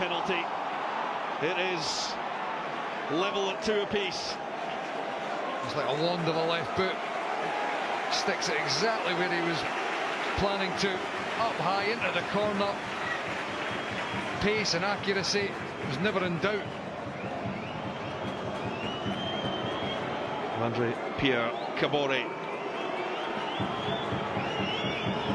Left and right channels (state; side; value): identical; both; correlation 1.00